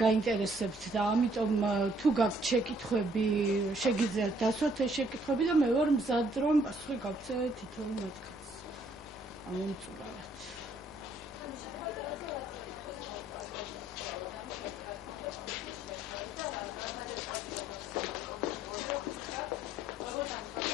გაინტერესებთ და ამიტომ თუ გაქვთ შეკითხვები, შეგიძლიათ დასვათ ეს შეკითხვები და მე ვარ მზად რომ პასუხი გავცე თითოეულ მათგანს. ამომწურავად.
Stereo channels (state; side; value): normal; both; correlation 0.65